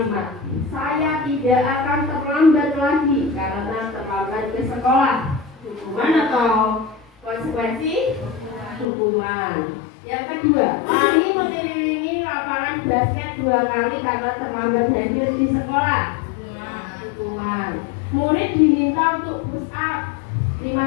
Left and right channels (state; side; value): drops out; right; at 8.8 s